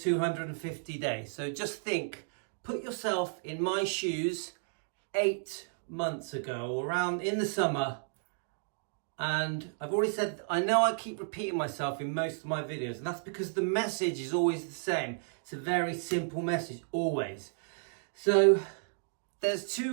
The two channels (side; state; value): left; silent; digital silence